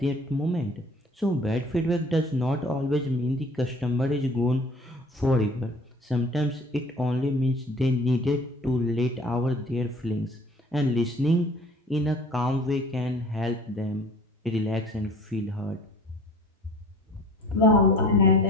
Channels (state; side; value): normal; both; correlation 0.49